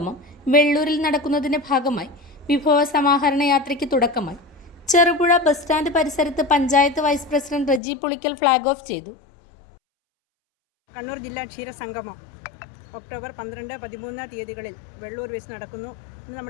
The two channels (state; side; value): drops out; right; at 7.8 s